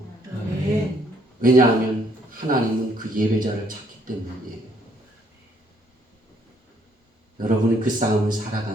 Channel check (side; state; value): both; normal; correlation 0.67